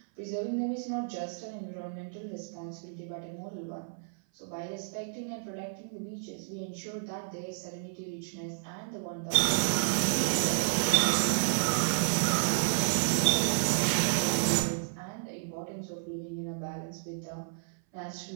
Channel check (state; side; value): silent; left; 57 dB below the other